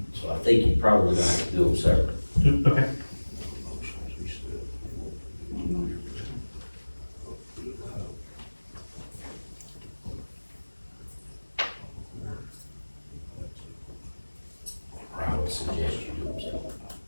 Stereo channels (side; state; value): both; inverted; correlation -1.00